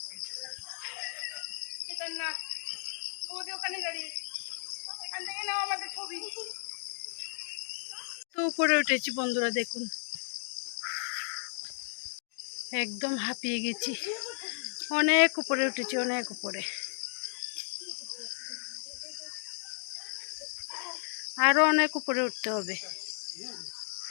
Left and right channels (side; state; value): right; silent; digital silence